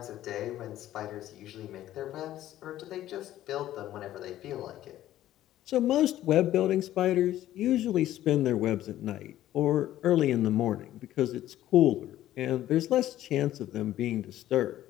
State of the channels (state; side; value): quieter; right; 13.4 dB